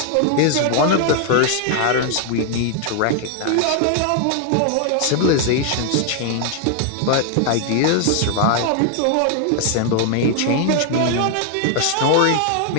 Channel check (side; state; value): both; different; correlation 0.00